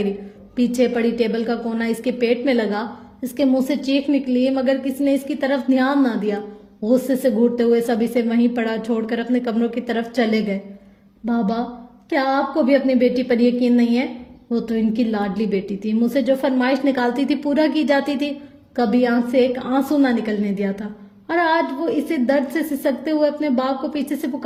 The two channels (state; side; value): identical; both; correlation 1.00